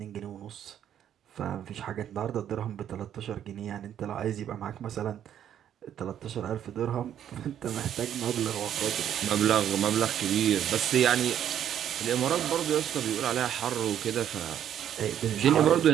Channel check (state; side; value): quieter; left; 10.1 dB